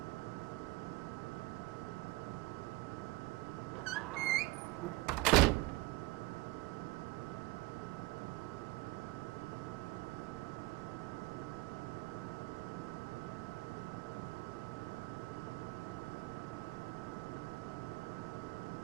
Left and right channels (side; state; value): left; quieter; 20.9 dB